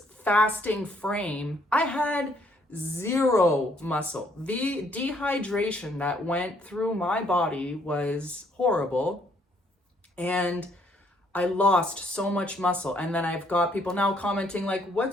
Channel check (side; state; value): both; normal; correlation 0.67